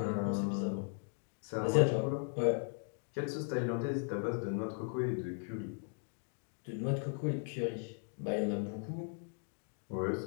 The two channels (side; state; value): right; silent; 53 dB below the other